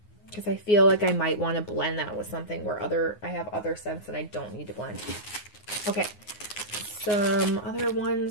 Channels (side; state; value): right; late; 9.6 ms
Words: because I feel like I might want to blend that with something where I have other scents that I don't need to blend. Okay, some other